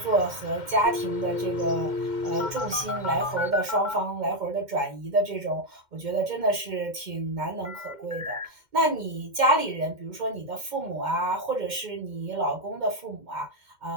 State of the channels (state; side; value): late; left; 2.1 ms